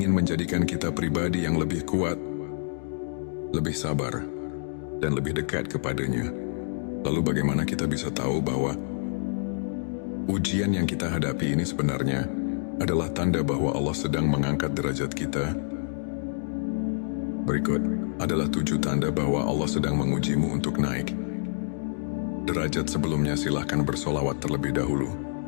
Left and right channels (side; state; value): right; silent; digital silence